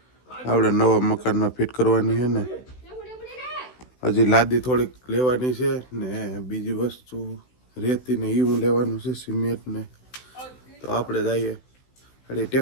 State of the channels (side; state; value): right; late; 16 ms